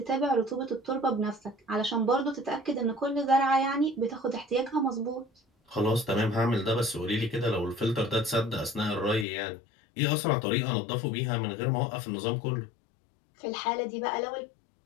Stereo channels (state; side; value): drops out; right; at 9.2 s